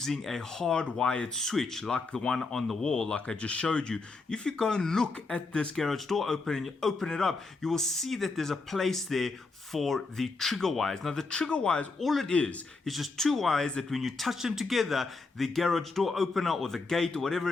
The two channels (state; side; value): quieter; right; 3.8 dB